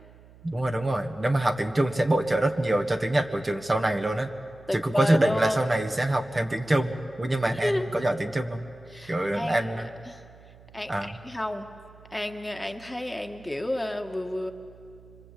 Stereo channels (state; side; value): noise; right; hum, 23 dB below the sound